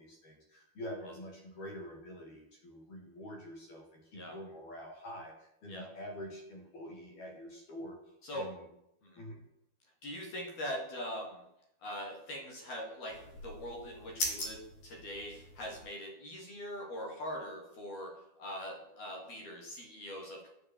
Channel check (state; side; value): late; right; 12 ms